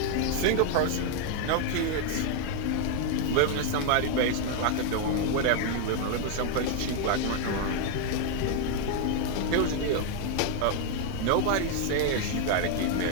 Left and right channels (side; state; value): both; different; correlation 0.01